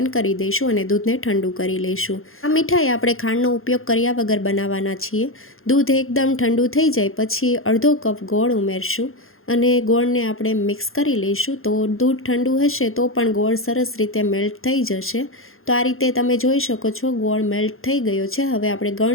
કરી દઈશું અને દૂધને ઠંડુ કરી લઈશું। આ મીઠાઈ આપણે ખાંડનો ઉપયોગ કર્યા વગર બનાવવાના છીએ। દૂધ એકદમ ઠંડુ થઈ જાય પછી અડધો કપ ગોળ ઉમેરશું અને ગોળને આપણે મિક્સ કરી લઈશું। તો દૂધ ઠંડુ હશે તો પણ ગોળ સરસ રીતે મેલ્ટ થઈ જશે। તો આ રીતે તમે જોઈ શકો છો ગોળ મેલ્ટ થઈ ગયો છે। હવે આપણે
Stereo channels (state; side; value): late; right; 0.61 ms